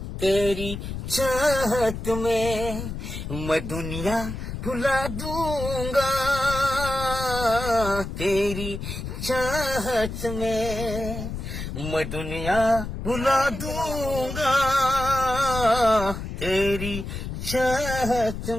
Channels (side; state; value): left; noise; rumble, 7 dB below the sound